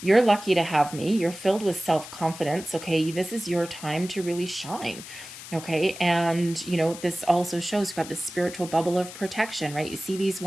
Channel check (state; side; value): noise; left; hiss, 13 dB below the sound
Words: You're lucky to have me. You're filled with self-confidence, okay? This is your time to really shine, okay? And, this also shows you've got this spiritual bubble of protection, right? You see these